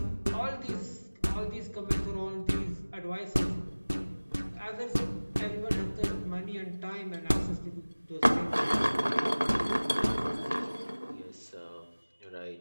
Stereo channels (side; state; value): both; inverted; correlation -1.00